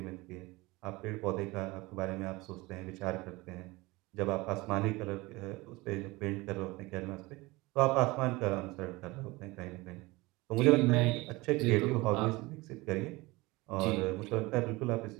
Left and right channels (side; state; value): left; quieter; 22.1 dB